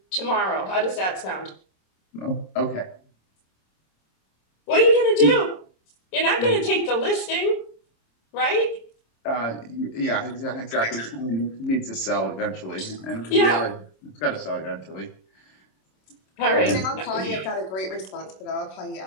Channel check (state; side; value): late; right; 26 ms